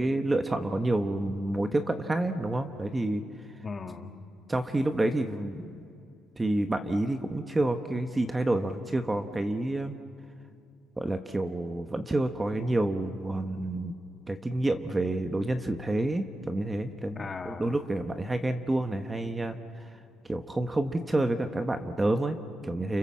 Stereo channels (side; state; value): both; normal; correlation 0.93